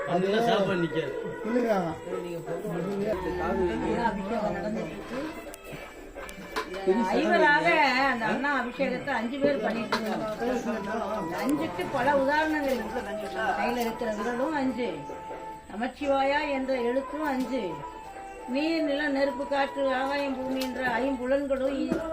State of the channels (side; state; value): both; identical; correlation 1.00